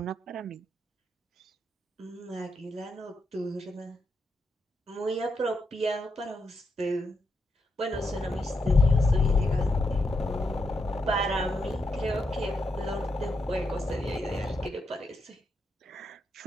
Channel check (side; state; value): both; normal; correlation 0.82